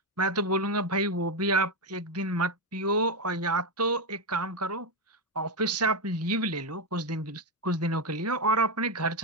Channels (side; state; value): both; normal; correlation 0.08